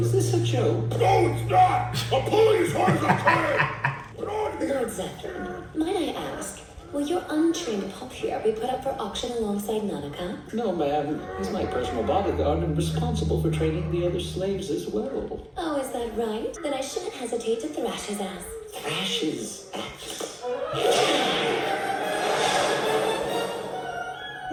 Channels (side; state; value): both; identical; correlation 1.00